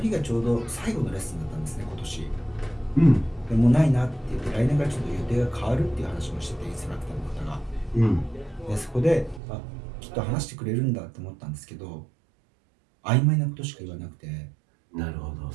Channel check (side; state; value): left; drops out; at 9.4 s